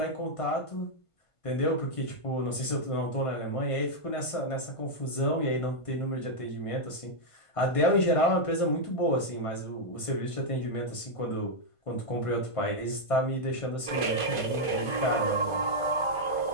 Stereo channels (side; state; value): right; late; 1.5 ms